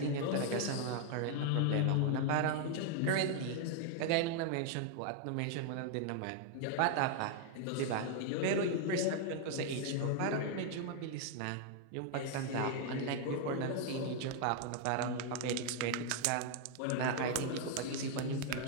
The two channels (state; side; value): different; both; correlation 0.00